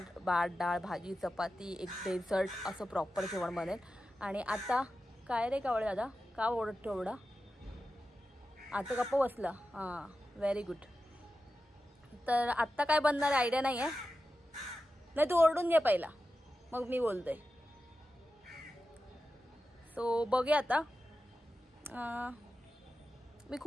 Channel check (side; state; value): both; normal; correlation 0.92